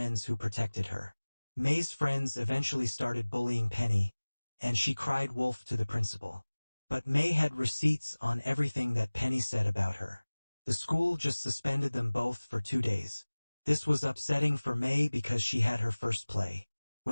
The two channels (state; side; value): inverted; both; correlation -1.00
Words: who protected her. May's friends eventually started bullying Penny, and she cried wolf to the principal. But May had receipts on everything that Penny said about her. The school just suspended them both for 2 days. This was upsetting for May because she had her first play.